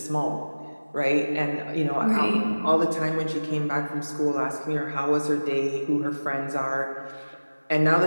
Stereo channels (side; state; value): both; inverted; correlation -1.00